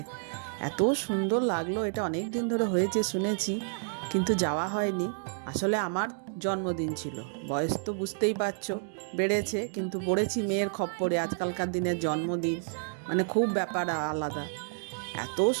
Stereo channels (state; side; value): silent; left; digital silence